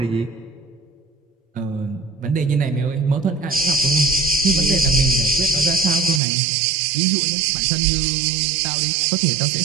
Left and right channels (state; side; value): drops out; left; at 6.2 s